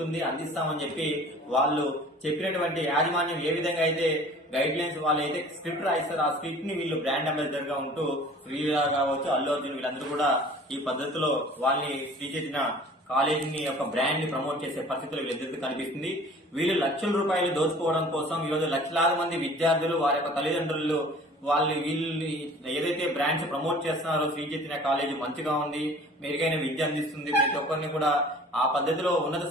అందిస్తామని చెప్పి వాళ్ళు చెప్పినటువంటి యాజమాన్యం ఏ విధంగా అయితే గైడ్ లైన్స్ వాళ్ళు అయితే స్క్రిప్ట్ రాయిస్తారు, ఆ స్క్రిప్ట్ ని వీళ్ళు బ్రాండ్ అంబాసిడర్ గా ఉంటూ శ్రీలీల కావచ్చు, అల్లు అర్జున్ వీళ్ళందరూ కూడా ఈ పద్ధతిలో వాళ్ళని శ్రీ చైతన్య కాలేజీని యొక్క బ్రాండ్ ని ప్రమోట్ చేసే పరిస్థితులు వీళ్ళిద్దరికీ కనిపిస్తుంది. వీళ్ళు లక్షల రూపాయలు దోచుకోవడం కోసం ఈరోజు లక్షలాది మంది విద్యార్థులు, వారి యొక్క తల్లిదండ్రులు వీళ్ళు ఏదైతే బ్రాండ్స్ ప్రమోట్ చేస్తున్నారో శ్రీ చైతన్య కాలేజీ మంచిగా ఉంది, మెరుగైన విద్య అందిస్తుంది, ప్రతి ఒక్కరిని కూడా ఆ పద్ధతిలో ఉన్నత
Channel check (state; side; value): normal; both; correlation 0.47